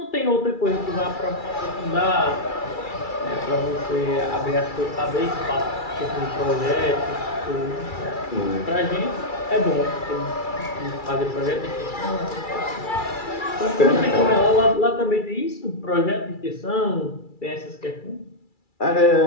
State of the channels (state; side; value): late; right; 2.3 ms